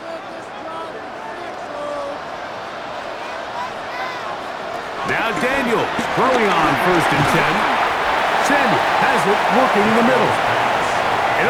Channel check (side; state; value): both; identical; correlation 1.00